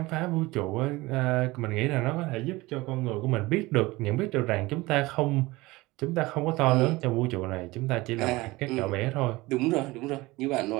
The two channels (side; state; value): left; quieter; 20.9 dB